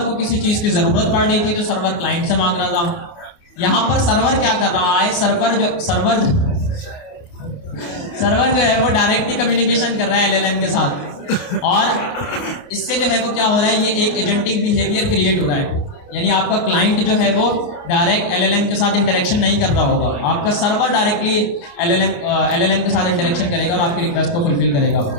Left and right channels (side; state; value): right; late; 29 ms